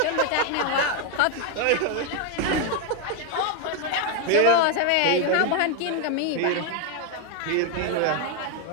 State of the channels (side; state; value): both; different; correlation 0.01